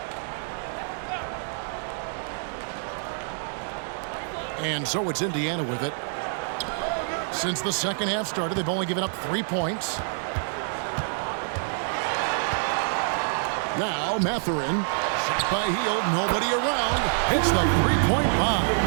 And so it's Indiana with it. Since the second half started, they've only given up 3 points. Now Mathurin. Shot by Hield, nobody around. Hits the 3-point bomb.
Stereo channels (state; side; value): silent; left; digital silence